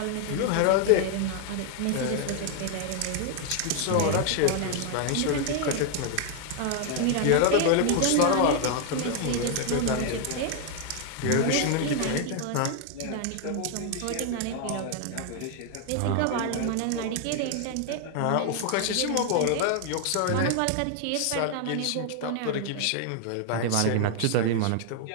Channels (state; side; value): different; both; correlation 0.00